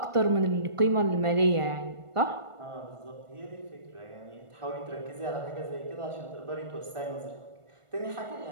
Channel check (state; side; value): late; left; 1.4 ms